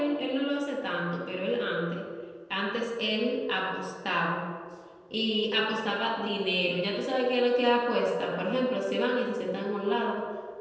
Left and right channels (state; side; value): identical; both; correlation 1.00